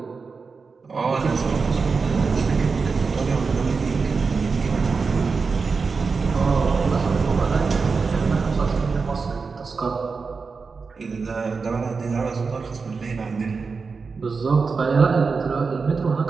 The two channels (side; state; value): left; quieter; 4.8 dB